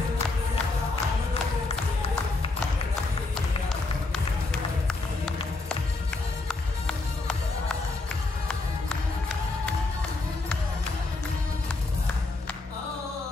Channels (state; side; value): quieter; right; 3.3 dB